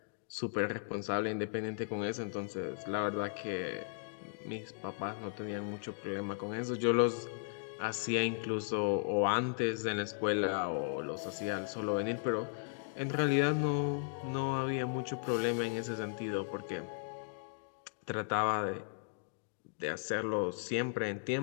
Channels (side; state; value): right; silent; digital silence